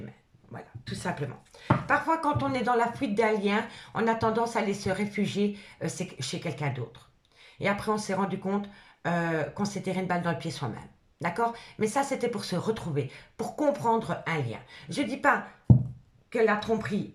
Voilà, tout simplement. Parfois, quand on est dans la fuite d'un lien, on a tendance à aller se réfugier chez quelqu'un d'autre. Et après, on s'est rendu compte qu'on s'est tiré une balle dans le pied soi-même. D'accord? Mais ça, c'était pour se retrouver, pour comprendre un lien. Je ne dis pas que la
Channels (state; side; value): identical; both; correlation 1.00